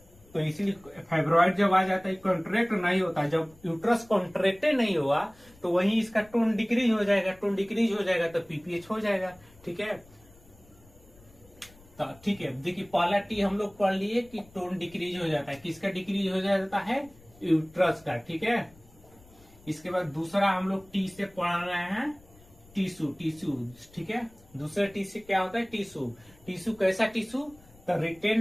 तो इसीलिए फाइब्रॉइड जब आ जाता है कॉन्ट्रैक्ट नहीं होता। जब यूट्रस कॉन्ट्रैक्ट नहीं हुआ तो वहीं इसका टोन डिक्रीज हो जाएगा, टोन डिक्रीज हो जाएगा तो पीपीएच हो जाएगा। ठीक है, तो ठीक है, देखिए पहला टी हम लोग पढ़ लिए कि टोन डिक्रीज हो जाता है, किसका डिक्रीज हो जाता है, यूट्रस का। ठीक है, इसके बाद दूसरा हम लोग टी से पढ़ रहे हैं टिश्यू, ठीक है, दूसरे टी से क्या होता है, टिश्यू कैसा टिश्यू, द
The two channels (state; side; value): noise; left; rumble, 26 dB below the sound